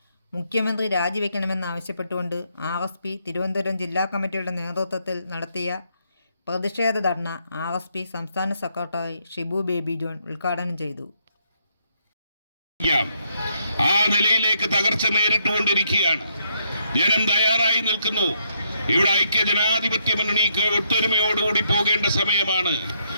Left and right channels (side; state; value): both; inverted; correlation -0.74